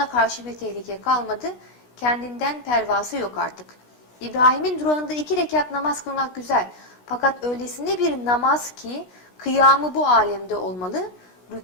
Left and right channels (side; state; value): right; late; 16 ms